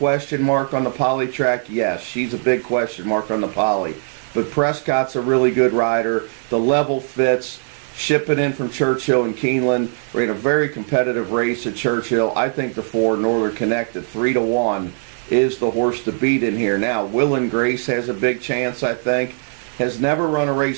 mark on the poly track? Yes, she's a big question mark on the poly. But Prescott's a really good rider. The level fits. Shipping in from Churchill and Keeneland. We're in a very competitive race at Churchill. I think the 4, Northern Connect, at 3-1, is the horse to beat in here. Now, Will and Grace has a big chance, I think. Has never run a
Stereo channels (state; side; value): silent; left; 66 dB below the other